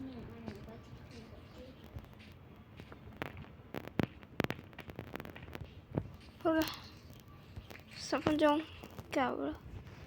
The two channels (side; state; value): both; identical; correlation 1.00